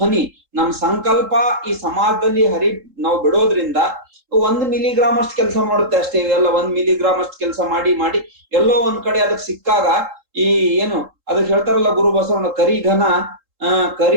ನಮ್ಮ ಸಂಕಲ್ಪ ಈ ಸಮಾಜದಲ್ಲಿ ನಾವು ಬಿಡೋದ್ರಿಂದ 1 ಮಿಲಿಗ್ರಾಮ್ ಅಷ್ಟು ಕೆಲಸ ಮಾಡುತ್ತೆ ಅಷ್ಟೇ. ಇವೆಲ್ಲ 1 ಮಿಲಿಗ್ರಾಮ್ ಅಷ್ಟು ಕೆಲಸ ಮಾಡಿ ಎಲ್ಲೋ ಒಂದ್ ಕಡೆ ಅದಕ್ಕೆ ಸಿಕ್ಕಾಗ, ಈ ಏನು ಅದಕ್ಕೆ ಹೇಳ್ತಾರಲ್ಲ ಗುರು ಬಸವಣ್ಣ,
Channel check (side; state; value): left; late; 3.7 ms